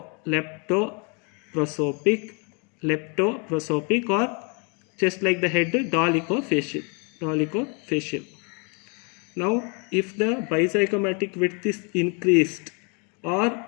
or just like the head, dolichofacial. Now, if the bizygomatic width is increased or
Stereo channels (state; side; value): quieter; right; 34.9 dB